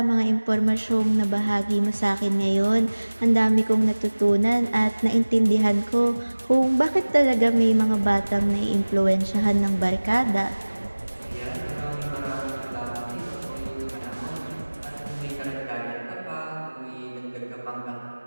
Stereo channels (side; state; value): both; inverted; correlation -1.00